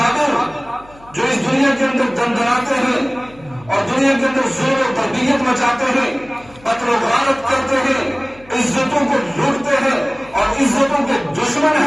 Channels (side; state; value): left; noise; hum, 25 dB below the sound